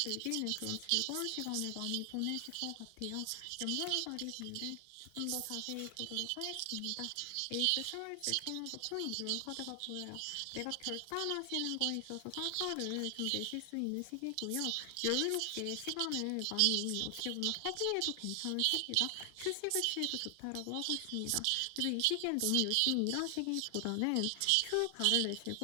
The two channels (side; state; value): both; different; correlation 0.00